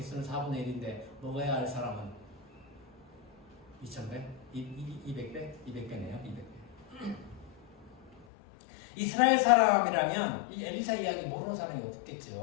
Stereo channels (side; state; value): right; drops out; at 8.2 s